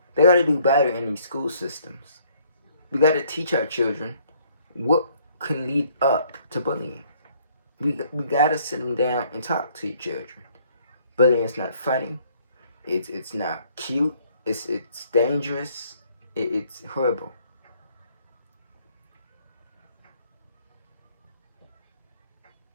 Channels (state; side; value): inverted; both; correlation -0.63